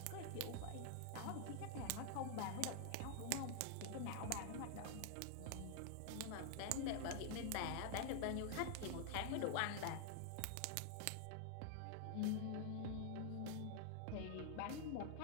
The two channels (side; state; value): both; different; correlation 0.00